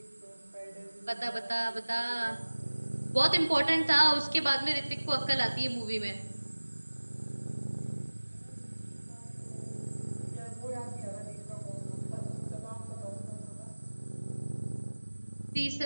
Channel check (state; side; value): inverted; both; correlation -1.00